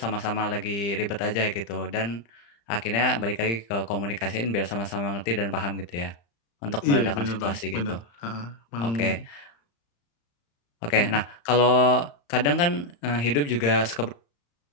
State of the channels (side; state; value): right; late; 35 ms